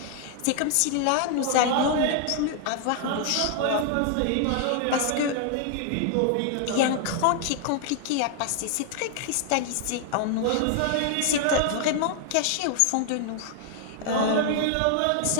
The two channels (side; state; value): both; different; correlation 0.00